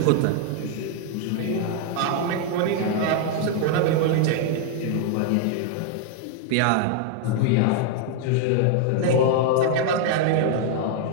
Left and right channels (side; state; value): both; different; correlation 0.00